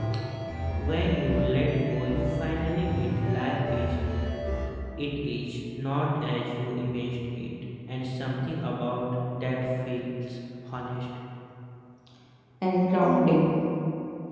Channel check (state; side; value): identical; both; correlation 1.00